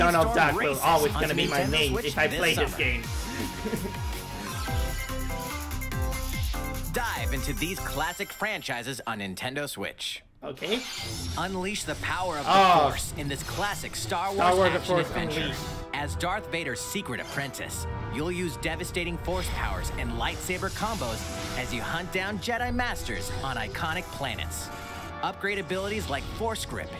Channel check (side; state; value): both; identical; correlation 1.00